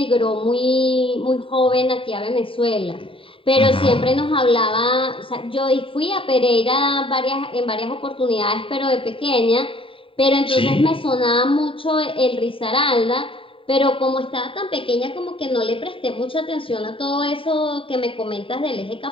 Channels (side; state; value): right; late; 0.25 ms